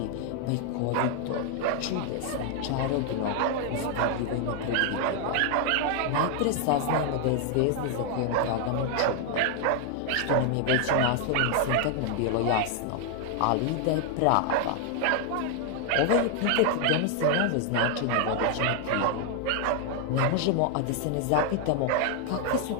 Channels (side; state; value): both; different; correlation 0.00